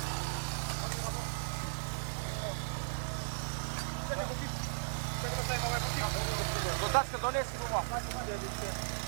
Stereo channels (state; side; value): silent; left; digital silence